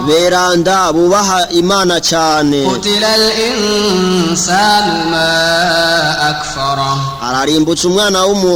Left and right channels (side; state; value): both; identical; correlation 1.00